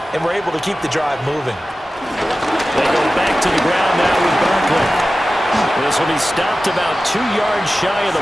and were able to keep the drive moving. They go back to the ground now with Barkley. This will be stopped about 2 yards shy of the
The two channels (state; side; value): normal; both; correlation 0.95